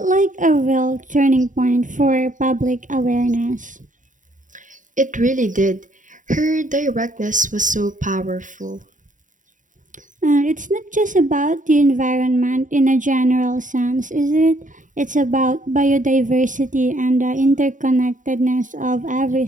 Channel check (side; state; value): left; late; 0.37 ms